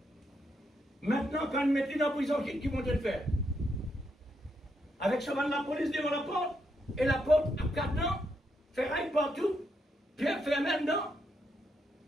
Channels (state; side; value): normal; both; correlation 0.79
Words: Maintenant, quand ils mettent dans la prison, qui vont le faire? Avec ce de la police devant la porte, et la porte à 4 ans, ferraille partout, pierre fermée dedans.